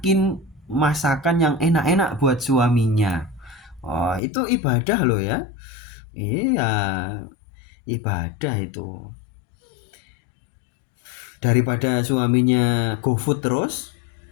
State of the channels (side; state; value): right; drops out; at 4.2 s